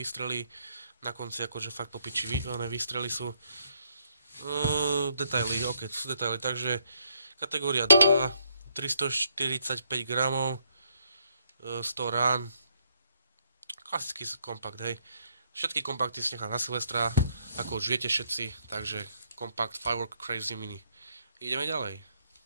Na konci akože fakt popiči výstrely sú. Detaily, ok, to sú detaily, takže kategória 2, 345 gramov, 100 rán, klasický kompakt, hej. Všetky kompakty si nechám na Silvestra, ako už viete všetci, takže kompakt Firework Crazy Mini. Ideme ďalej.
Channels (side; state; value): both; inverted; correlation -0.72